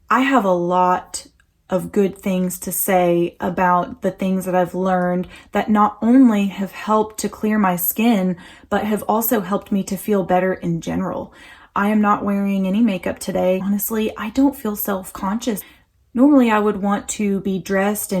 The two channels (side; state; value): both; identical; correlation 1.00